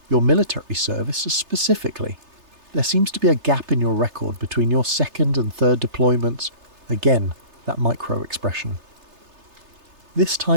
"Your military service specifically. There seems to be a gap in your record between your second and third deployments." Again, that micro expression. This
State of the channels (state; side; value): late; left; 3.3 ms